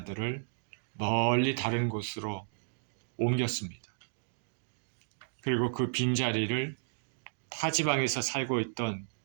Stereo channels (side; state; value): left; silent; digital silence